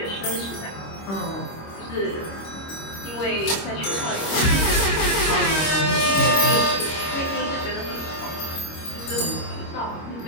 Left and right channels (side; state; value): right; late; 26 ms